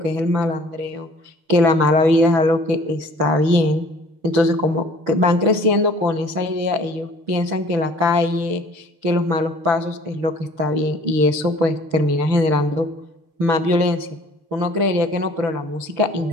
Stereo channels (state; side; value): late; left; 6.6 ms